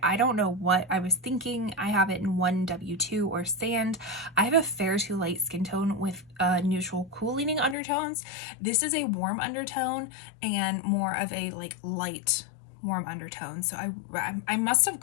I don't know what I was thinking. I have it in 1W2 or Sand. I have a fair to light skin tone with neutral cool leaning undertones. This is a warm undertone and more of a like light warm undertone. So I must have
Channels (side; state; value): right; drops out; at 7.8 s